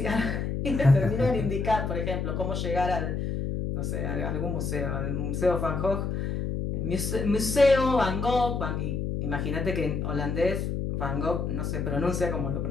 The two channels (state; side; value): noise; left; hum, 2 dB below the sound